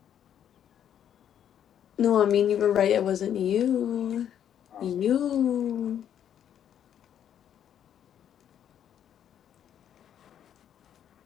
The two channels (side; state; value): right; quieter; 9.6 dB